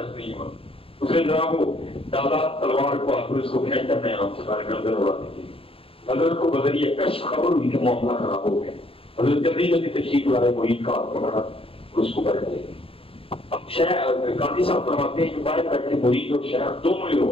نہیں ہوا اس نے ذرا وہ ڈالا تلوار کو آخر اس کو پھینکا میں آپ سے سارے گردن اڑانے کے لیے حضرت کو بدلیے کشف خبر ہوئی کہ معاملہ خراب ہو گیا حضرت جلدی جلدی تشریف لائے مرید کا ہاتھ پکڑا اس کو بیٹھ دے اب شیخ گاندھی صاحب فرماتے ہیں کہ باہر بیٹھے مرید اور شیخ دونوں ہی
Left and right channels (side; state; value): right; late; 0.27 ms